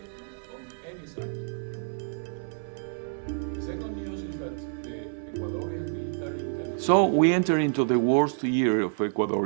On any side. The second news is that the Ecuadorian military intelligence. So we enter into the worst year of Ecuador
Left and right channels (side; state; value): left; silent; 59 dB below the other